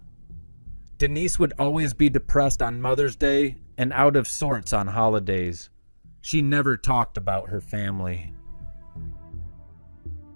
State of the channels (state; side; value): inverted; both; correlation -1.00